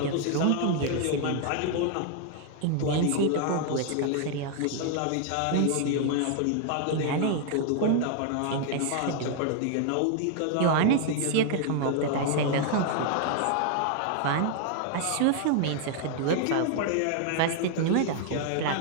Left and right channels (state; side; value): different; both; correlation 0.00